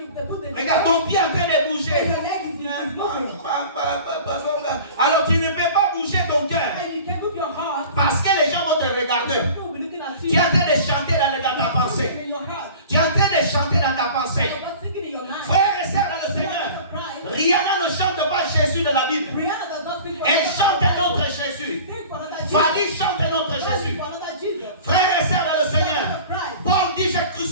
Regarde ton pied en train de bouger. Alors tu ne peux pas bouger ton cœur. Parce que les gens vont te regarder. Tu es en train de chanter dans ta pensée. Tu es en train de chanter dans ta pensée. Frères et sœurs dans le Seigneur, Rihanna ne chante pas Jésus de la Bible. Elle chante un autre Jésus. Fanny chante un autre Jésus. Frères et sœurs dans le Seigneur, Paul dit j'ai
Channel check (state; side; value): inverted; both; correlation -0.41